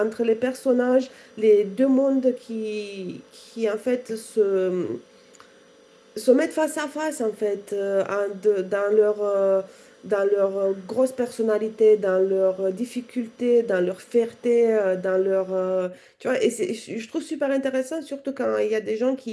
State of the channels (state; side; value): identical; both; correlation 1.00